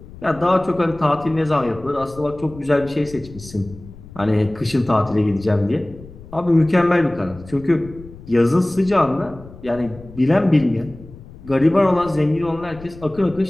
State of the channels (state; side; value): noise; left; rumble, 18 dB below the sound